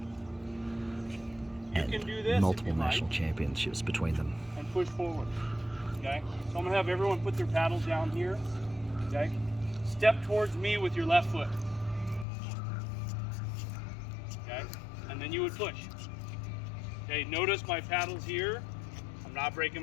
and multiple national championships between them. And push forward. Okay? So I'm going to have everyone put their paddles down here. Okay? Step towards me with your left foot. Okay? And then you would push. Okay, notice my paddles here. I'm not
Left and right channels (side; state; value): right; drops out; at 12.2 s